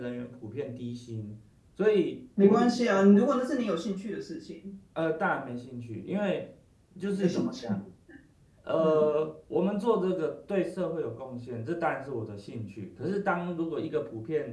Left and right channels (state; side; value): identical; both; correlation 1.00